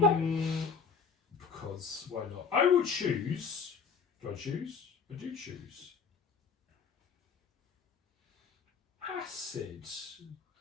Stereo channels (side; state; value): right; quieter; 5.8 dB